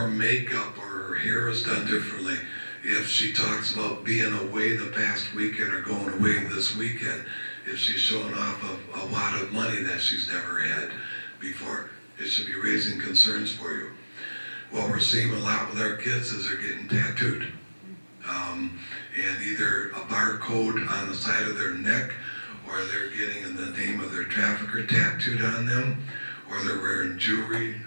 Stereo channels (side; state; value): both; inverted; correlation -1.00